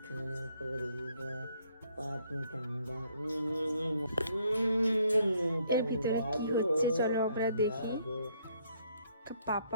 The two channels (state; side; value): inverted; both; correlation -0.68